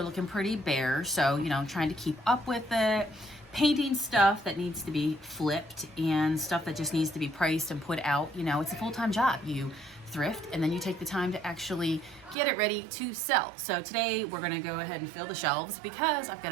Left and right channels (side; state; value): left; drops out; at 12.4 s